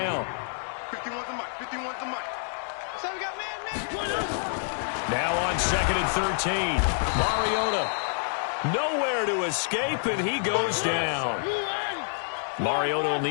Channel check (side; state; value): right; silent; digital silence